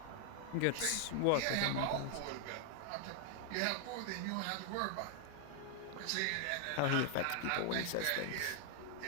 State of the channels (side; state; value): both; different; correlation 0.00